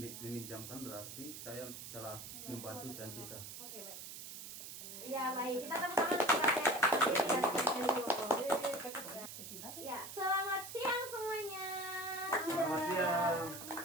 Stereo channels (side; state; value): right; noise; hiss, 10 dB below the sound